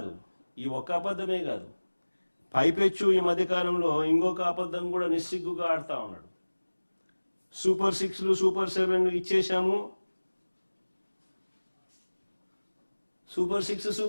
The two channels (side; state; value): both; inverted; correlation -1.00